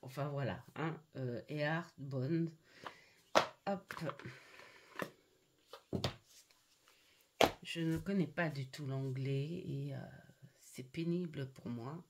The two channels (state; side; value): identical; both; correlation 1.00